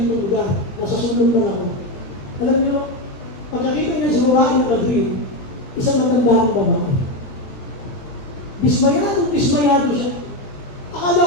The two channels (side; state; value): right; late; 19 ms